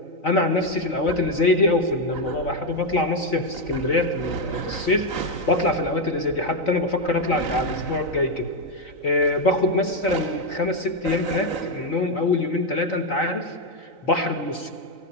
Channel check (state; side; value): late; right; 3.9 ms